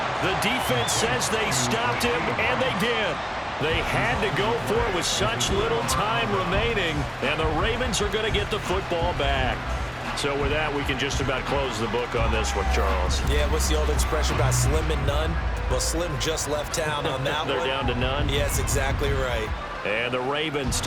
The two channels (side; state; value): both; identical; correlation 1.00